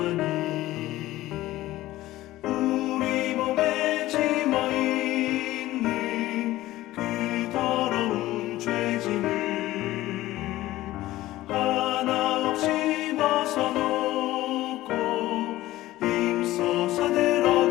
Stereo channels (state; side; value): quieter; right; 16.2 dB